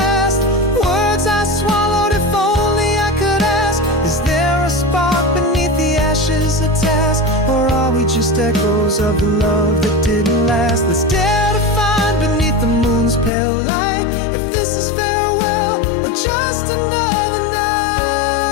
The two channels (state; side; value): drops out; right; at 13.3 s